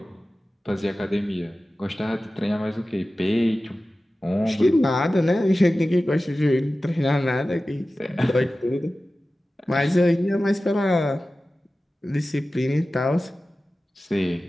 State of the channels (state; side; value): normal; both; correlation 0.95